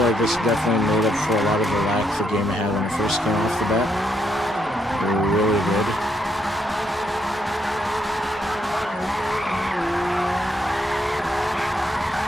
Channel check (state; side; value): normal; both; correlation 0.76